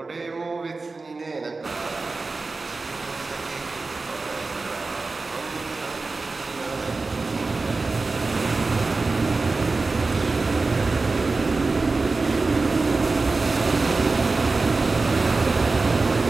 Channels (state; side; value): quieter; left; 3.8 dB